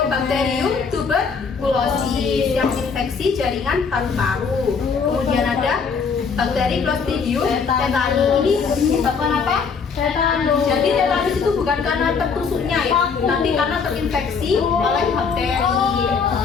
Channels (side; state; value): right; quieter; 5.6 dB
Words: tuberculosis yang infeksi jaringan paru-paru. Kemudian ada bakteri Clostridium tetani. Ini menyebabkan apa? Tetanus. Jadi tetanus itu bukan karena tertusuknya ya, tapi karena terinfeksi oleh bakteri.